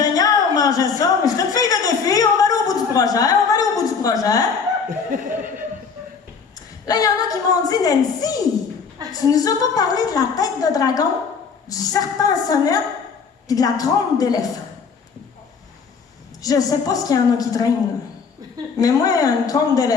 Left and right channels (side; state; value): right; quieter; 5.7 dB